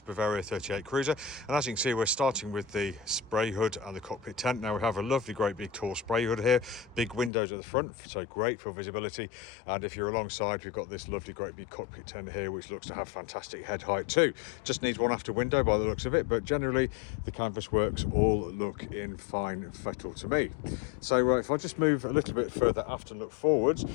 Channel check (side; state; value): right; drops out; at 7.3 s